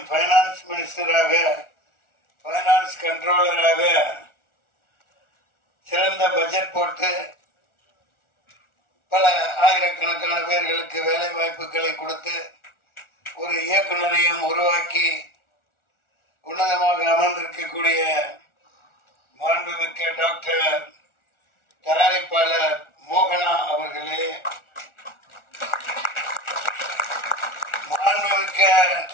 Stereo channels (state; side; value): late; right; 1.4 ms